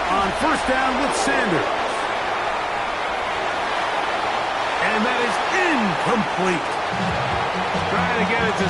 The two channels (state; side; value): identical; both; correlation 1.00